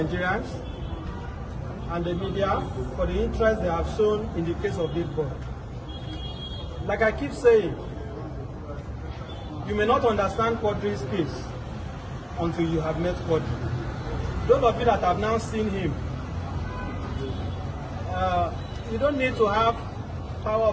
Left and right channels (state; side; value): identical; both; correlation 1.00